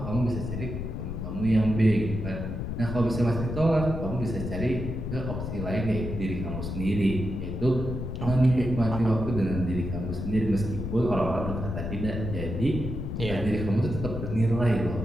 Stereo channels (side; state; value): left; noise; rumble, 5 dB below the sound